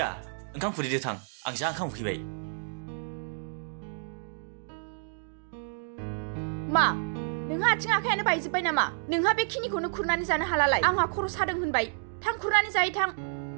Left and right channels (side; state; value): left; silent; digital silence